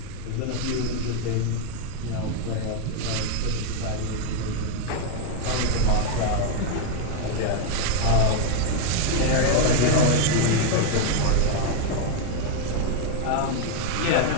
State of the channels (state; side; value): different; both; correlation 0.01